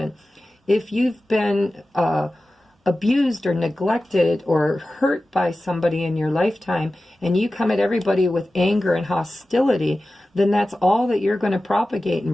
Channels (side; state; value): both; normal; correlation 0.95